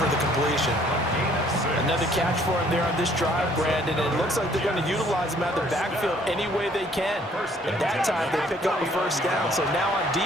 the completion. Another catch for him there on this drive, Brandon, and it looks like they're going to utilize him out of the backfield any way they can. And that time, they pick up a first down. So now on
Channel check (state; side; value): normal; both; correlation 0.61